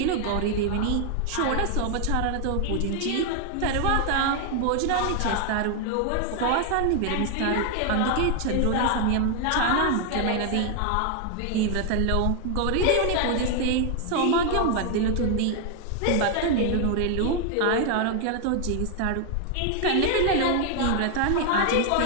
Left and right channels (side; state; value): both; different; correlation 0.00